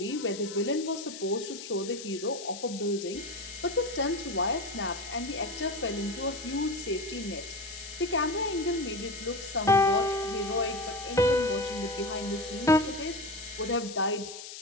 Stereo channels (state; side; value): noise; left; hiss, 11 dB below the sound